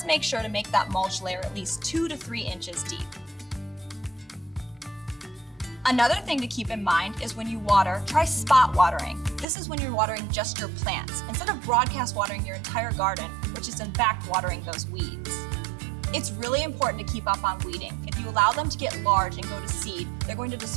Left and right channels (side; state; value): left; drops out; at 9.5 s